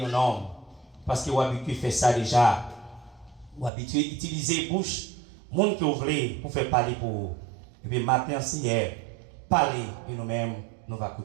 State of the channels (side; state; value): left; drops out; at 3.7 s